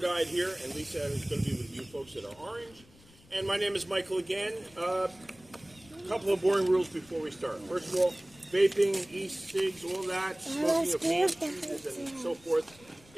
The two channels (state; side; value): noise; left; rumble, 26 dB below the sound